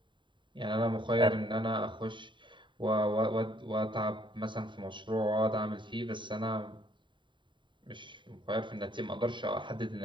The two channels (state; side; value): late; left; 0.23 ms